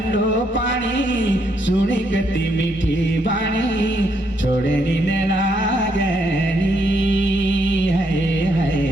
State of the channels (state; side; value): normal; both; correlation 0.74